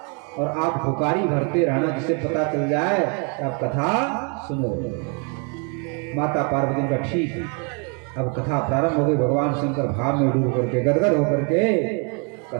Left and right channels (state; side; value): quieter; left; 36.7 dB